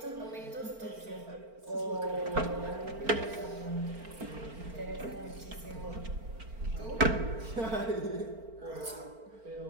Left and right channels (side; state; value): left; late; 4.4 ms